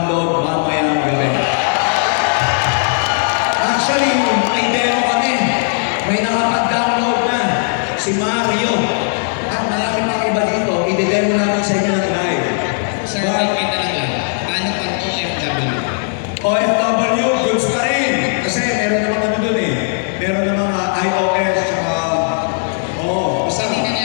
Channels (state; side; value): silent; right; 68 dB below the other